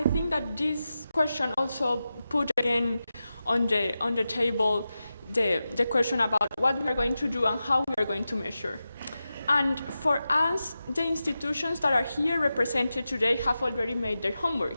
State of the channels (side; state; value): both; inverted; correlation -0.92